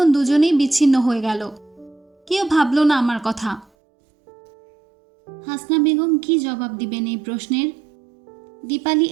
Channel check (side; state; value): left; drops out; at 3.7 s